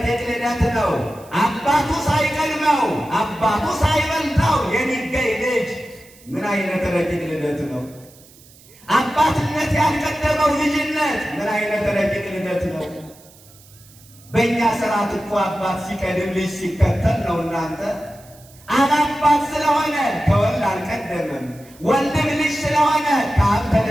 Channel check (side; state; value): right; noise; hiss, 25 dB below the sound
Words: ልደት ነው። አባቱ ሳይቀድመው አባቱ ሳይበልጠው የሚገኝ ልጅ ምን አይነት ረቂቅ ልደት ነው! አባትነት ያልቀደመው ልጅነት ምን አይነት ረቂቅ ልደት ነው! በእኛ ስርዓት እኮ አባት ሲቀድም ልጅ ሲከተል ነው። እናንተ አብ አባት ስለሆነ ከወልድ አልቀደምም፣ ወልድም ልጅ ስለሆነ ከአብ